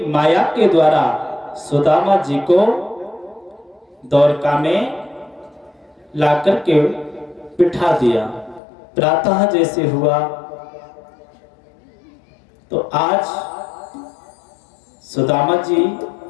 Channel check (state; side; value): drops out; right; at 8.6 s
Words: माया के द्वारा सुदामा जी को द्वारका में लाकर के बिठा दिया। प्रातः जैसे हुआ तो आज सुदामा जी